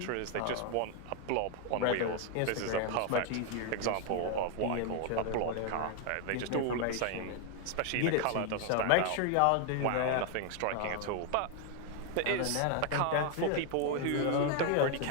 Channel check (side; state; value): both; different; correlation 0.01